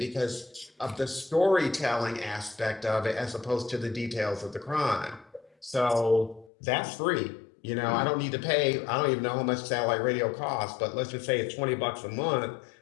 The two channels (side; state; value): right; drops out; at 6.5 s